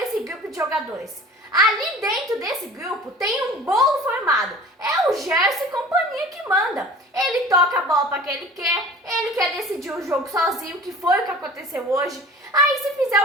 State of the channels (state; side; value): normal; both; correlation 0.43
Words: grupo de jogadores. Ali dentro desse grupo tem um bolo formado. É o Gerson e companhia que manda. Ele toca a bola para quem ele quer decidir o jogo sozinho, que foi o que aconteceu hoje. Aí se